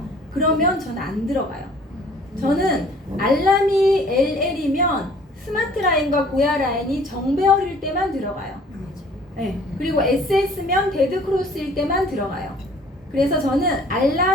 그러면 저는 안 들어가요. 저는 알람이 LL이면 스마트 라인과 고야 라인이 정배열일 때만 들어가요. 네. 그리고 SS면 데드 크로스일 때만 들어가요. 그래서 저는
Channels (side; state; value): both; normal; correlation 0.54